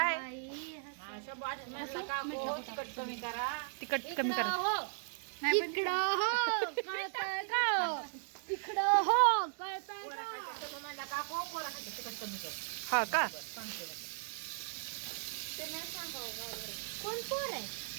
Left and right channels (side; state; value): left; silent; digital silence